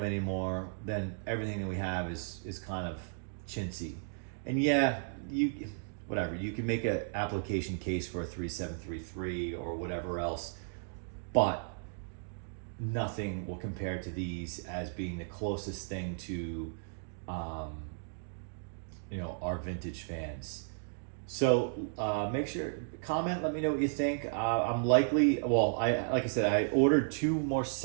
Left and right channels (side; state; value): left; silent; digital silence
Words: anymore, then everything that we have is kind of chintzy. And yeah, you can make an application case for a 3733 or whatever else, but nothing will compare to these as being the closest thing to our vintage fans. So make sure, comment, let me know what you think. I'm likely, well, like I said, I ordered 2 more